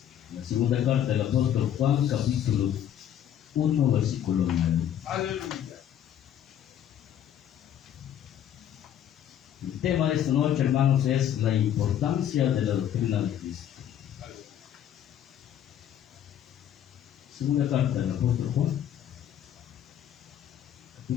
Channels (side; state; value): right; quieter; 10.2 dB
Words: La segunda carta del apóstol Juan, capítulo 1, versículo 9. Aleluya. El tema de esta noche, hermanos, es la importancia de la doctrina de Cristo. Segunda carta del apóstol Juan,